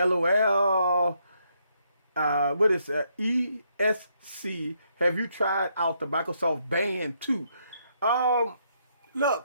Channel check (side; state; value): both; inverted; correlation -0.75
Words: What is ESC? Have you tried out the Microsoft Band 2?